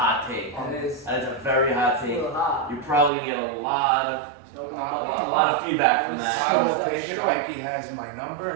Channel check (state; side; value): drops out; left; at 3.1 s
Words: take. That is That is a very hot a take. little hot. You're probably gonna get a lot of So, a lot of feedback from that. I will take it. Ike has my number